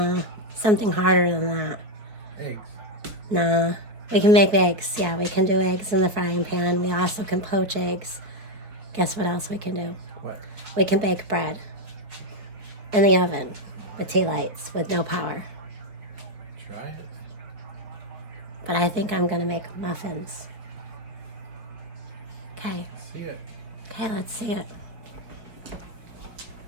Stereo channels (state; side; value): late; left; 4.5 ms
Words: something harder than that. Eggs. Nah, we can make eggs. Yeah, we can do eggs in the frying pan. We also can poach eggs. Guess what else we can do? What? We can bake bread in the oven with tea lights with no power. Try it. But I think I'm gonna make muffins. Okay. See it. Okay, let's see it.